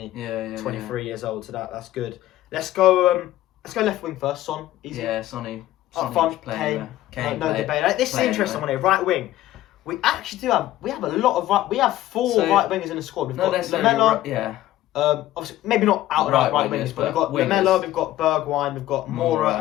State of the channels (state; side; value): quieter; right; 14.5 dB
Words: 23 years old. So that's good. Let's go left wing first. Son, easy. Yeah, Sonny. Up front, Kane, no debate. This is an interesting one here. Right wing. We actually do have. We have a lot of. We have 4 right wingers in the squad. We've got Lamela. Obviously, maybe not out and out right wingers, but we've got Lamela, we've got Bergwijn, we've got Moura,